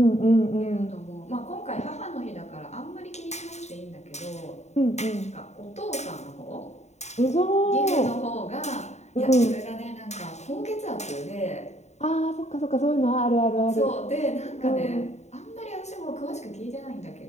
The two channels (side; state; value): right; late; 0.32 ms